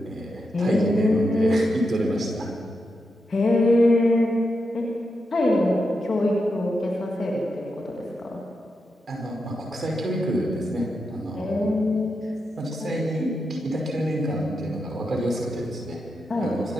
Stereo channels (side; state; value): both; normal; correlation 0.86